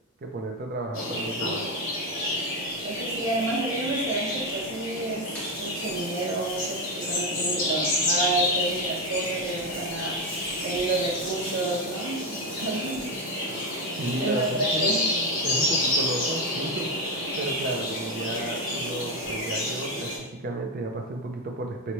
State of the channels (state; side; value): normal; both; correlation 0.11